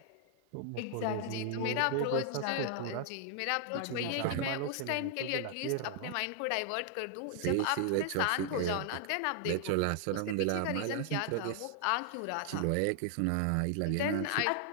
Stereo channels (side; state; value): both; different; correlation 0.00